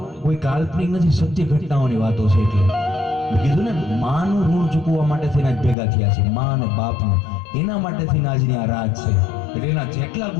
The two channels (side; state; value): right; drops out; at 5.8 s